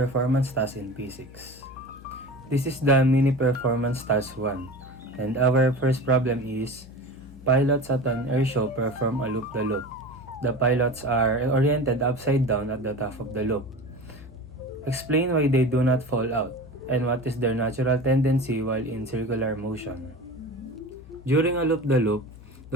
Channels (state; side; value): noise; left; hum, 19 dB below the sound